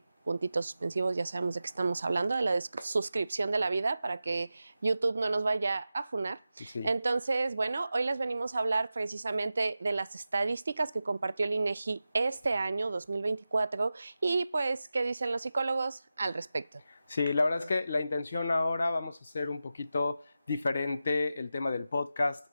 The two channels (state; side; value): inverted; both; correlation -0.93